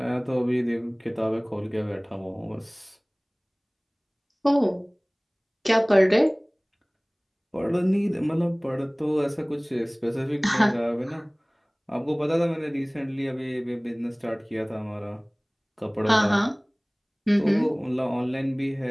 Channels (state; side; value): identical; both; correlation 1.00